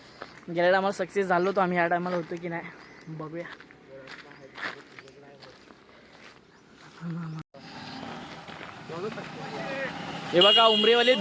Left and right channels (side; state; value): both; identical; correlation 1.00